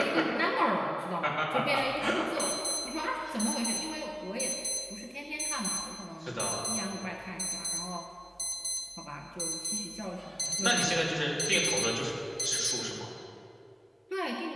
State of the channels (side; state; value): both; identical; correlation 1.00